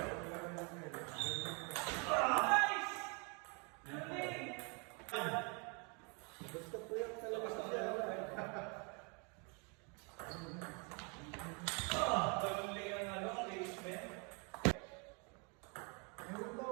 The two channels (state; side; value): quieter; left; 34.0 dB